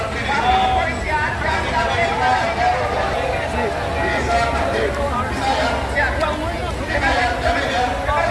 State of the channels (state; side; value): identical; both; correlation 1.00